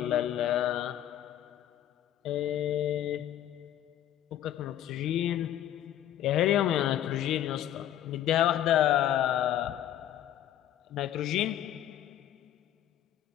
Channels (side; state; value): right; quieter; 11.6 dB